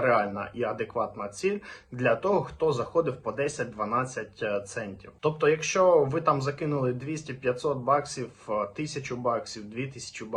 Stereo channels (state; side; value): identical; both; correlation 1.00